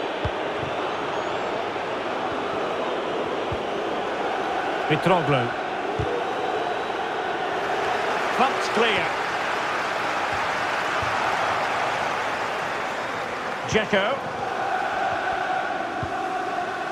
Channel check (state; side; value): identical; both; correlation 1.00